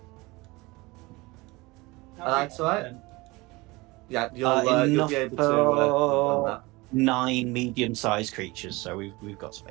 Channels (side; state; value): left; quieter; 22.9 dB